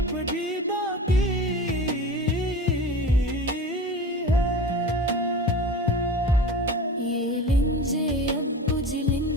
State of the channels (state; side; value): normal; both; correlation 0.33